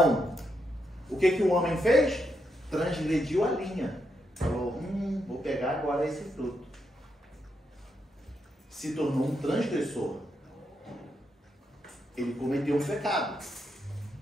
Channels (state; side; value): normal; both; correlation 0.81